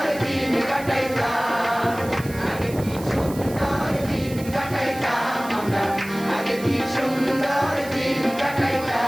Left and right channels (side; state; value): right; noise; hiss, 16 dB below the sound